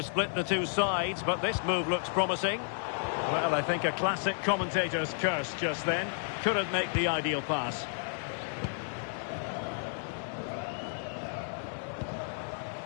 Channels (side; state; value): right; silent; 56 dB below the other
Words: split the two sides, but this move looks promising. Well, I think a classic commentator's curse just then. Couldn't make the ideal pass.